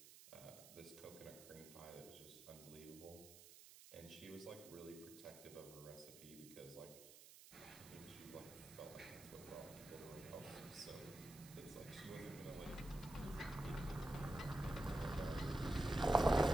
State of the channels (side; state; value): right; noise; hiss, 17 dB below the sound